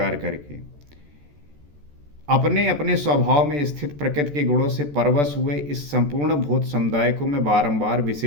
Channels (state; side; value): late; left; 14 ms